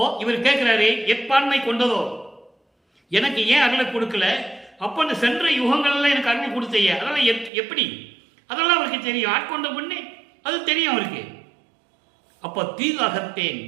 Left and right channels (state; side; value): drops out; left; at 7.5 s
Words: இவர் கேட்கிறாரு, எப்பான்மை கொண்டதோ, எனக்கு ஏன் அருளை கொடுக்கல? அப்போ அந்த சென்ற யுகங்கள்ல எனக்கு அருள் கொடுத்தையே, அதெல்லாம் எப்படி? அதெல்லாம் அவருக்கு தெரியும். ஆட்கொண்ட பொண்ணு அது தெரியும் அவருக்கு. அப்போ தீது அகத்தேன்,